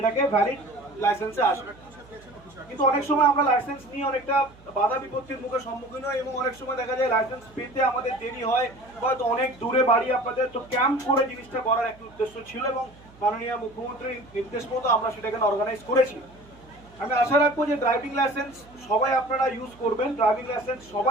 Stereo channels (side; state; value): right; noise; hum, 25 dB below the sound